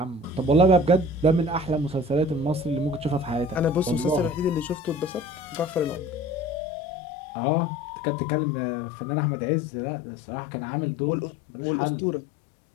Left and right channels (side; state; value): right; drops out; at 6.6 s